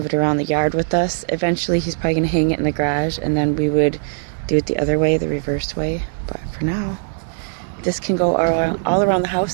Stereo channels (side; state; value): left; silent; digital silence